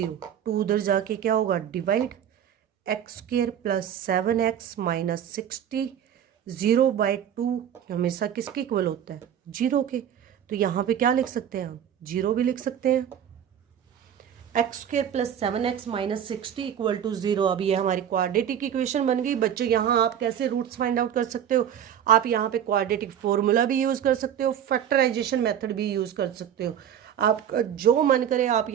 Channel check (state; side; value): quieter; left; 9.4 dB